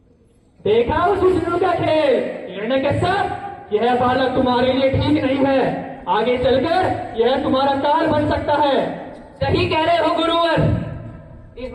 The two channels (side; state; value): both; identical; correlation 1.00